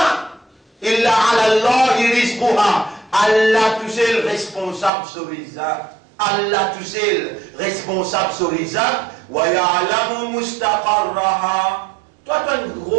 إِلَّا عَلَى اللَّهِ رِزْقُهَا. Allah tout seul responsable sur les actes. Allah tout seul responsable sur les actes. وَيَعْلَمُ مُسْتَقَرَّهَا. Toi, tu es un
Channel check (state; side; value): drops out; left; at 4.9 s